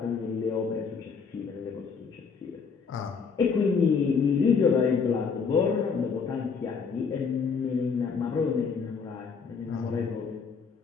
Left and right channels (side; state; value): right; quieter; 5.6 dB